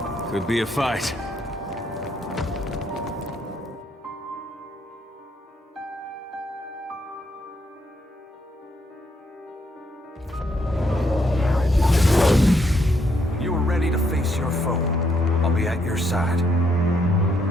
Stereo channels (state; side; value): normal; both; correlation 0.74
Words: Could be a fight. You are ready to face your foe. I'll be at your side.